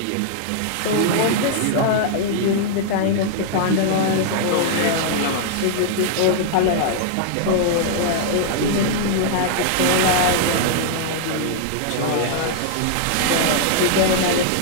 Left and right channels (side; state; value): both; different; correlation -0.01